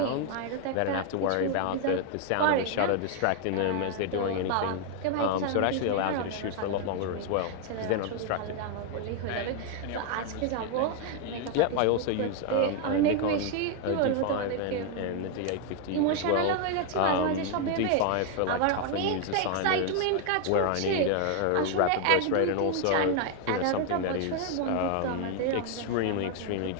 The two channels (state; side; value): different; both; correlation 0.00